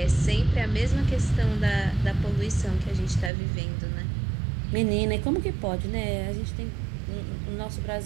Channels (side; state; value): left; drops out; at 3.3 s